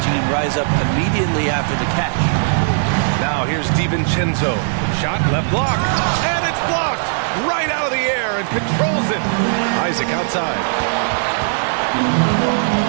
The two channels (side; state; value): left; silent; digital silence